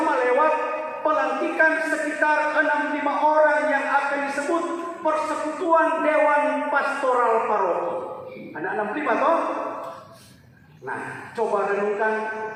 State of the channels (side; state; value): both; identical; correlation 1.00